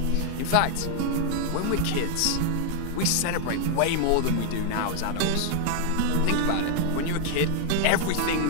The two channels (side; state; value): both; different; correlation 0.00